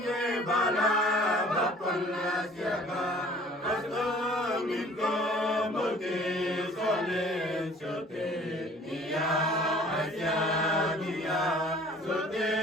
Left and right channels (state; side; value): normal; both; correlation 0.51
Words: bala bapal asyaga asdungin ko muti solen sote niya asya niya sote